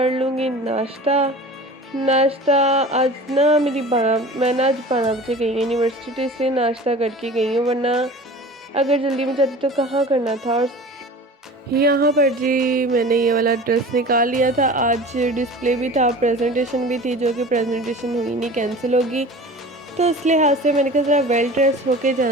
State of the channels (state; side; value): normal; both; correlation 0.39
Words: लूँगी नाश्ता। आज ना मैं ना आज 12 बजे गई हूँ यूनिवर्सिटी से, नाश्ता करके गई हूँ, वरना अगर जल्दी में जाती तो कहाँ करना था। और यहाँ पर जी मैंने ये वाला ड्रेस निकाल लिया था, आज डिस्प्ले भी था, प्रेजेंटेशन भी थी, जो कि प्रेजेंटेशन हुई नहीं, कैंसिल होगी। तो इस लिहाज से मैंने कहा ज़रा वेल ड्रेस होके